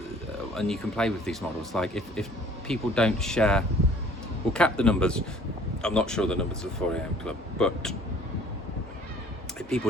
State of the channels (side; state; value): both; normal; correlation 0.54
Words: and you can play with these models. Like if people don't share, we'll cap the numbers. I'm not sure the numbers of the 4am Club, but if people